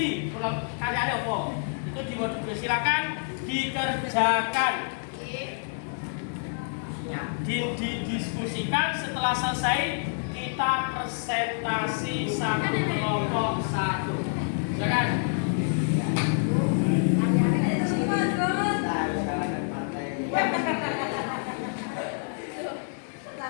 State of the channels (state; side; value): silent; right; digital silence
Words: Karyanya apa? Itu silakan dikerjakan. Didiskusikan. Setelah selesai kita presentasi satu kelompok satu. Silakan.